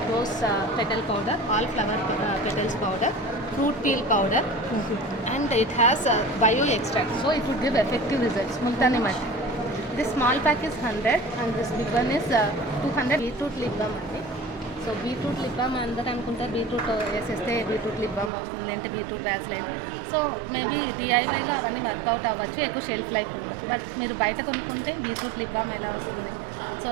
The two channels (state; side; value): drops out; left; at 18.3 s